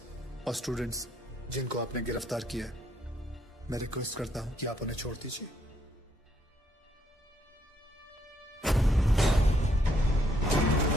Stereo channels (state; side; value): normal; both; correlation 0.72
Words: और स्टूडेंट्स जिनको आपने गिरफ्तार किया है, मैं रिक्वेस्ट करता हूं कि आप उन्हें छोड़ दीजिए।